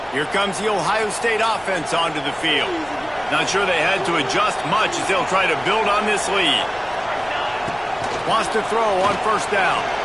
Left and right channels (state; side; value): noise; left; rumble, 24 dB below the sound